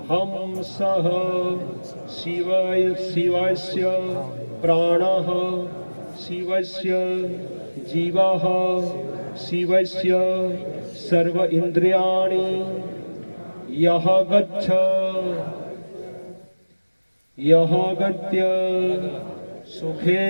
हम सह शिवाय शिवस्य प्राणः शिवस्य जीवः शिवस्य सर्व इंद्रियाणि यह गच्छ यह गत्य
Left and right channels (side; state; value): both; inverted; correlation -1.00